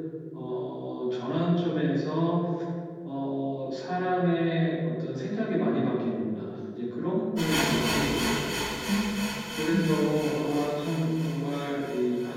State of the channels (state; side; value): identical; both; correlation 1.00